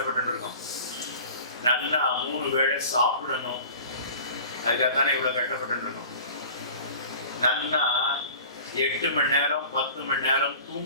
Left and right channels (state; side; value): inverted; both; correlation -0.41